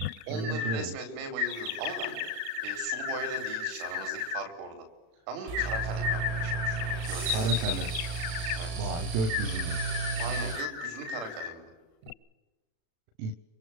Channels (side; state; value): left; late; 36 ms